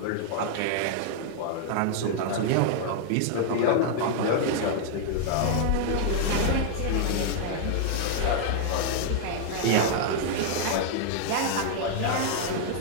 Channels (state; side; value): different; both; correlation -0.01